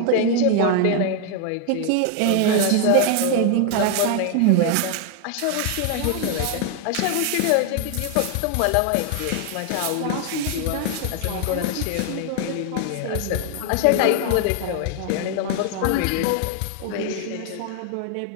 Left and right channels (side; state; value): both; different; correlation 0.00